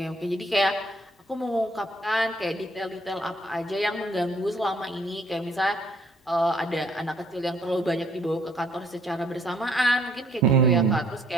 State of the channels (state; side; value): normal; both; correlation 0.64